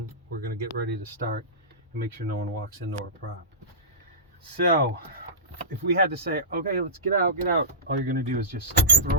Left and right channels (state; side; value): normal; both; correlation -0.19